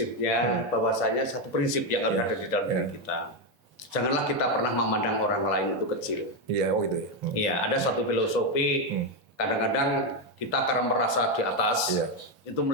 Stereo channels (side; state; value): both; normal; correlation 0.07